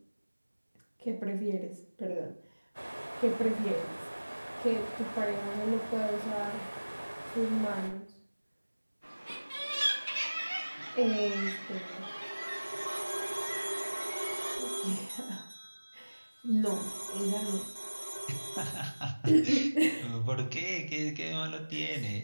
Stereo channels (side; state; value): both; inverted; correlation -1.00